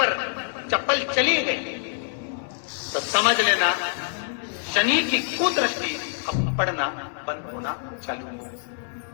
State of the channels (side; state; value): right; silent; digital silence